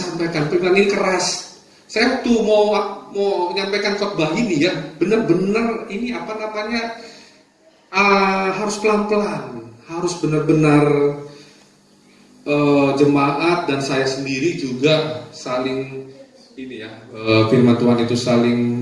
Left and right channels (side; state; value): both; identical; correlation 1.00